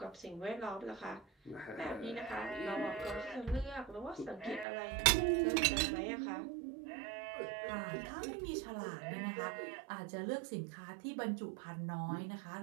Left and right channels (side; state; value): left; drops out; at 4.7 s